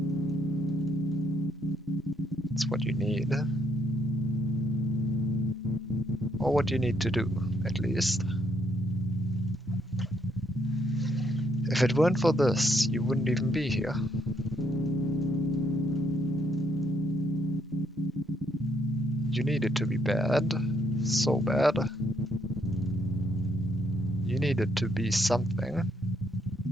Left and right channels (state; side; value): normal; both; correlation 0.73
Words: It's what you need. Or what you need to do, at least. If it weren't for this, you wouldn't even be here. You need it to be bad. So bad. You need it to be something.